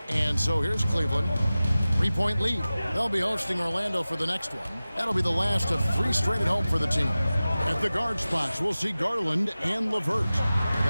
And so here's Cleveland. 3-point lead. They'll be hosting Orlando for the next one. That'll be the last of 3 straight at home for the team. At the guard spots, we'll see Garland and LeVert.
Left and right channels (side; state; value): both; inverted; correlation -0.97